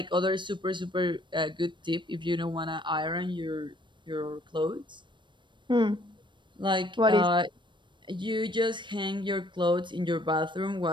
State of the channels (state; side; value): late; left; 0.23 ms